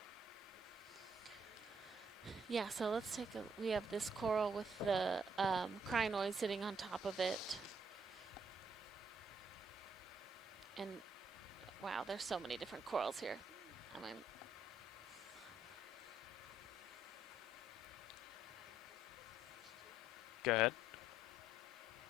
Yeah, so let's take a, we have this coral with the crinoid sitting on top of it. And wow, there's so many different corals here. I mean, Go ahead.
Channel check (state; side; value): normal; both; correlation 0.69